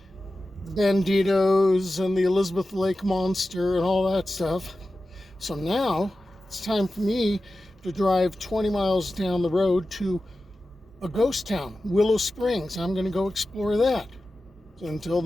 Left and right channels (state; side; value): normal; both; correlation 0.94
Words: the banditos and the Elizabeth Lake monster and all that stuff. So now it's time for me to drive 20 miles down the road to a ghost town, Willow Springs. I'm going to go explore that. So until